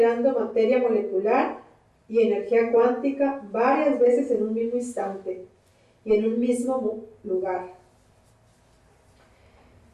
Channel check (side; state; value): both; identical; correlation 1.00